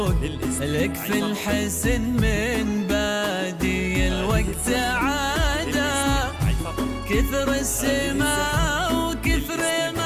لك في الحزن من بادي الوقت عاده. كثر السماء وكثر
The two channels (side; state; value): both; identical; correlation 1.00